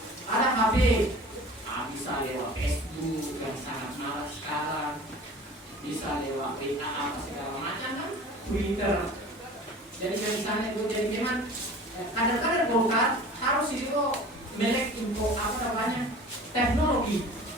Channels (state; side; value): normal; both; correlation 0.42